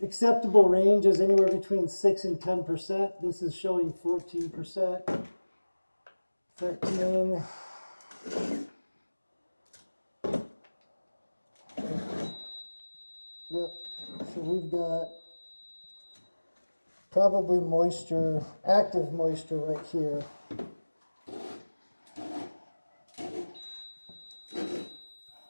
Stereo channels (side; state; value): both; inverted; correlation -1.00